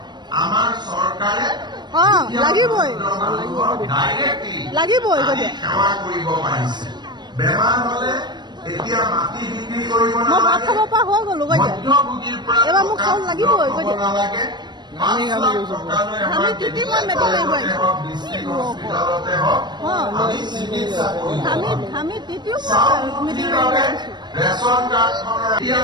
আমাৰ চৰকাৰে লাগিবই লাগিবই। কৈ দিয়া সেৱা কৰিব পাৰিছে। বেমাৰ হলে এতিয়া মাটি বিক্ৰী কৰিব মই ভাত খাব পৰা হৈ গলো। কৈ দিয়া মধ্যভোগীৰ পৰা এবাৰ মোক চাউল লাগিবই। কৈ দিয়া নালাগে। আমি তিতি মই মেট্ৰিক মাৰিব আমি তিতিও মিটিং মাৰিব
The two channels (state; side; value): late; left; 0.21 ms